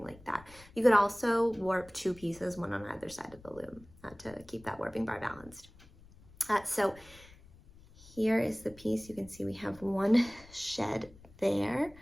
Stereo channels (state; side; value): noise; left; rumble, 23 dB below the sound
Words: like that. You could also warp 2 pieces, one on either side of the loom, to keep that warping bar balanced. So here is the piece. You can see we have one shed there.